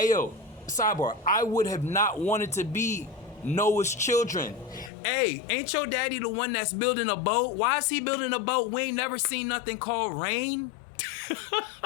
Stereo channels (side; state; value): right; drops out; at 4.9 s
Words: sidebar, I would have not wanted to be Noah's children. Hey, ain't your daddy the one that's building a boat? Why is he building a boat? We ain't never seen nothing called rain.